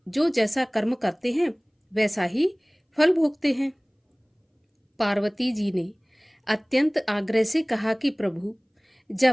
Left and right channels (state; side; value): identical; both; correlation 1.00